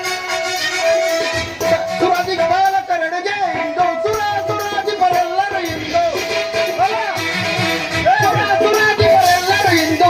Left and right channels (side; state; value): both; identical; correlation 1.00